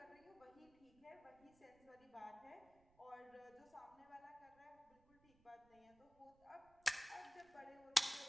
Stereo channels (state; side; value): noise; right; rumble, 28 dB below the sound